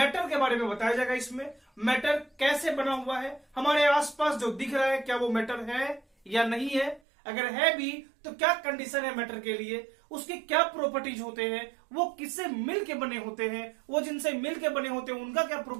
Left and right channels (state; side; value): drops out; left; at 7.0 s